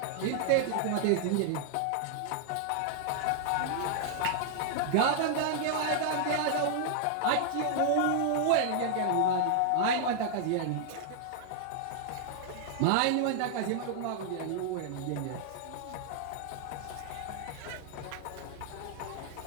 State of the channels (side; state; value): both; different; correlation -0.01